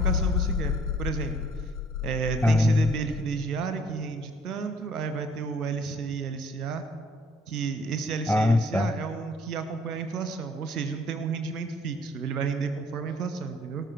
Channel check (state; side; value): normal; both; correlation 0.59